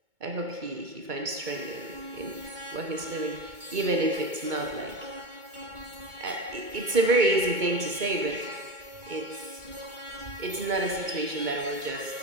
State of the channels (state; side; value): late; left; 2.2 ms